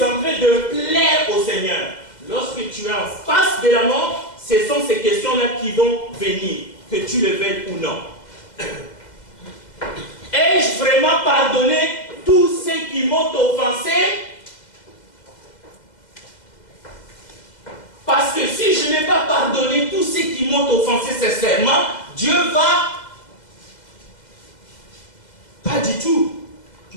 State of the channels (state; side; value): late; right; 2.0 ms